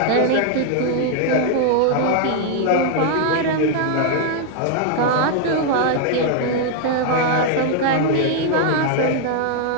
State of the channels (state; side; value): different; both; correlation 0.00